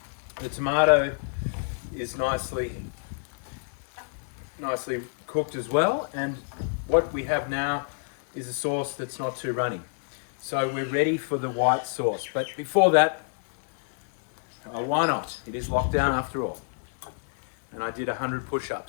The tomato is nicely cooked as well. And what we have now is a sauce that's not too runny. So we're ready for the white sauce. But before that, why not? It is lockdown after all. And I did 100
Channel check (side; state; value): right; silent; 60 dB below the other